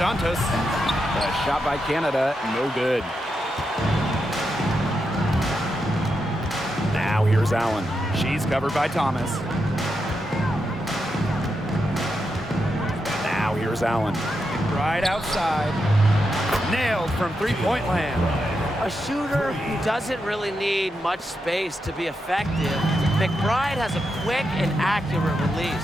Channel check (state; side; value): normal; both; correlation 0.85